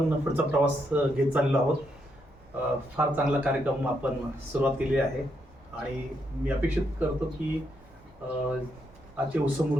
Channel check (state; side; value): normal; both; correlation 0.79